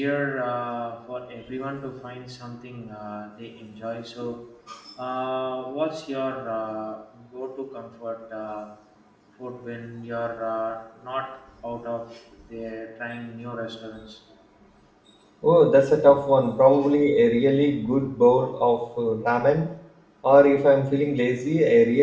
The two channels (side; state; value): both; identical; correlation 1.00